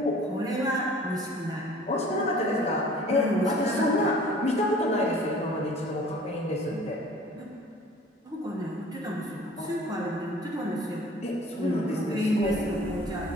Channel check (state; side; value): normal; both; correlation 0.49